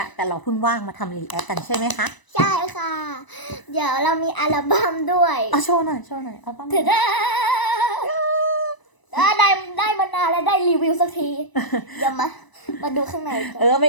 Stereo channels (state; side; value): late; right; 1.0 ms